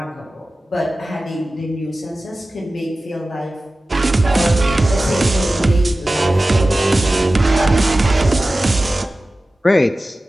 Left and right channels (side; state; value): both; normal; correlation 0.96